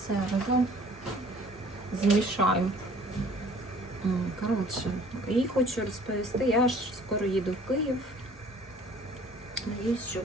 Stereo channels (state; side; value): normal; both; correlation 0.53